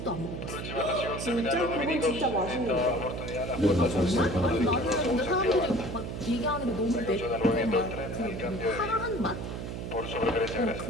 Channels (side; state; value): right; noise; hum, 6 dB below the sound